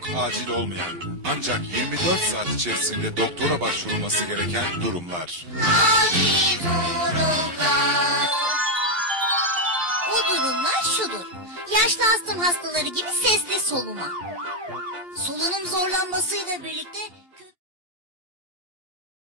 acil olmayan ancak 24 saat içerisinde doktora başvurulması gereken durumlar. Acil durumlar. O durumlar şudur. Yaşlı astım hastaları gibi sesli soluma. Solunum zorlanmasıyla birlikte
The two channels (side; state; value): right; late; 2.8 ms